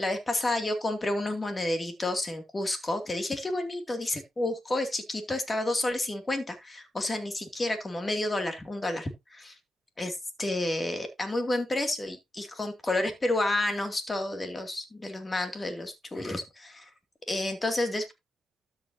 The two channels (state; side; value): normal; both; correlation 0.89